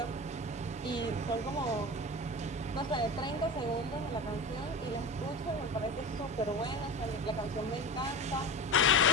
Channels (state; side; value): normal; both; correlation 0.28